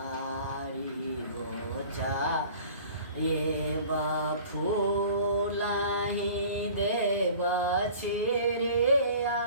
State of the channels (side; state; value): both; inverted; correlation -0.46